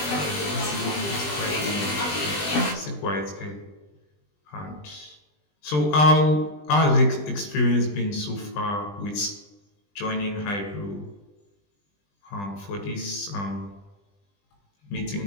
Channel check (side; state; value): right; late; 20 ms